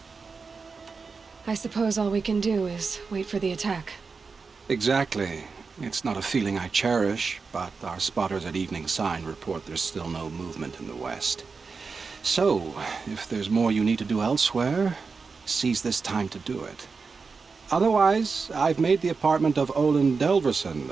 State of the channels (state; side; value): quieter; left; 4.8 dB